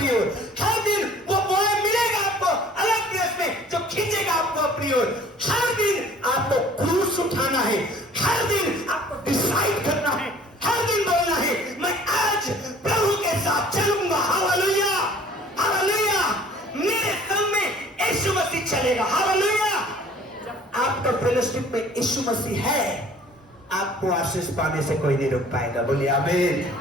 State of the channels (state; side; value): normal; both; correlation 0.52